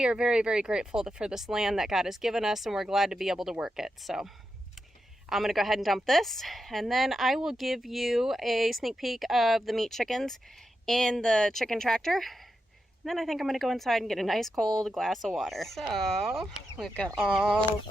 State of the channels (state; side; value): normal; both; correlation 0.87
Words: are very, very grateful for this land that God has given us, and we're glad to be able to work it. So I'm going to go ahead and dump this, and then I will give you a sneak peek of the meat chickens in the chicken tractor. And then I think I'm going to go inside and get a nice cold glass of water. So we've got all